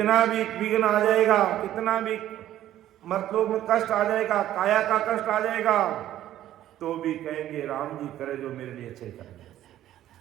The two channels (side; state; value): left; quieter; 12.7 dB